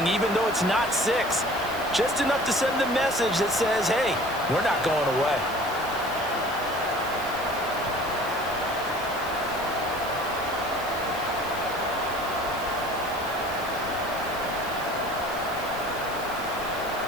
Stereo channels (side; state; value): right; noise; hiss, 15 dB below the sound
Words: even though it's not 6. Just enough to send the message that says, hey, we're not going away.